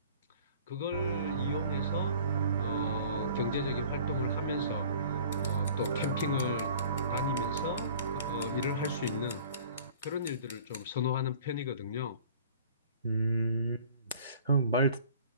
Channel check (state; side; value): inverted; both; correlation -0.48